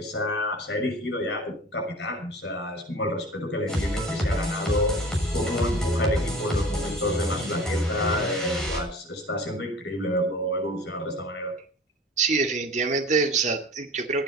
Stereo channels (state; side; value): normal; both; correlation 0.40